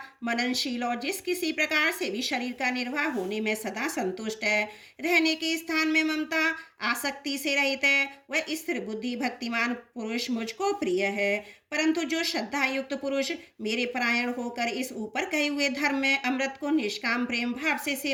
मननशील और जिस किसी प्रकार से भी शरीर का निर्वाह होने में सदा संतुष्ट है, रहने के स्थान में ममता आसक्ति से रहित है, वह स्थिर बुद्धि भक्तिमान पुरुष मुझको प्रिय है। परंतु जो श्रद्धा युक्त पुरुष मेरे परायण होकर इस ऊपर कहे हुए धर्म में अमृत को निष्काम प्रेम भाव से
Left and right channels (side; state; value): both; identical; correlation 1.00